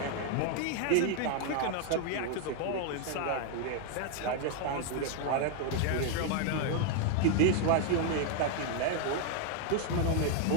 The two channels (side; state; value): both; different; correlation 0.01